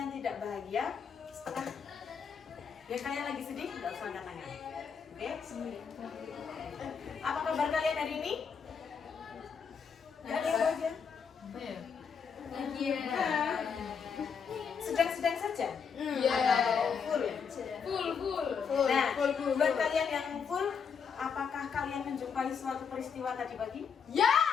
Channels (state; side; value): quieter; right; 6.4 dB